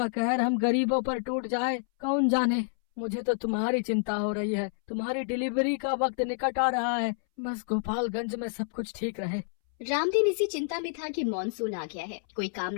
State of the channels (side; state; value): right; silent; 59 dB below the other